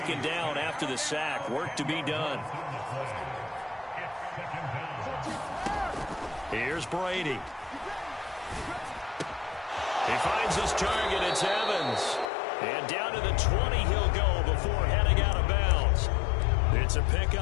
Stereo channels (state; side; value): drops out; right; at 12.3 s